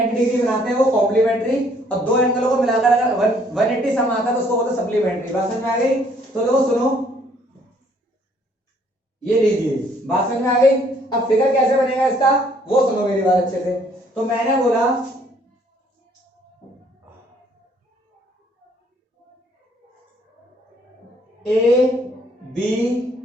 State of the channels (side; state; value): both; normal; correlation 0.63